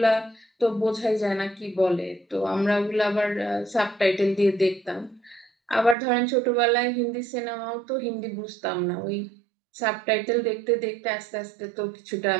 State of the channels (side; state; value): left; drops out; at 6.0 s